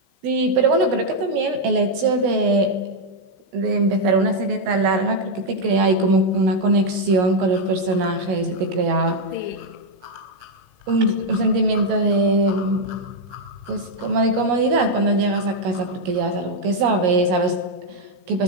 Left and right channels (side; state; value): left; late; 17 ms